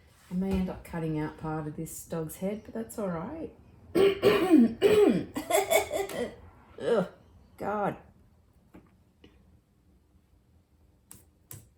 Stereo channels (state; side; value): identical; both; correlation 1.00